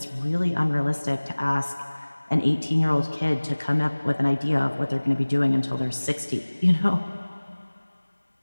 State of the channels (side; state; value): both; inverted; correlation -1.00